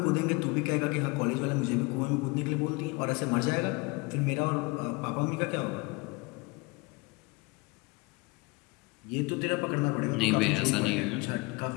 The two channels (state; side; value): quieter; right; 26.5 dB